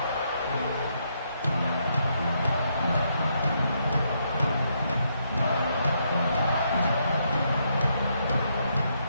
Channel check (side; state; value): both; inverted; correlation -0.76